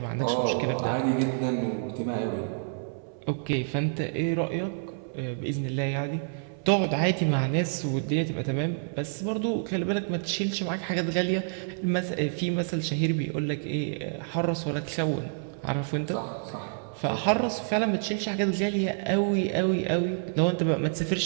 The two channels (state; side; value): silent; left; 59 dB below the other